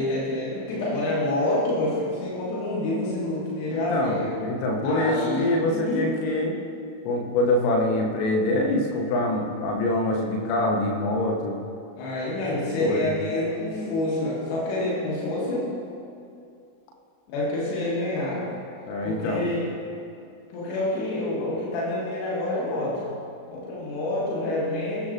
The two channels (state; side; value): late; right; 37 ms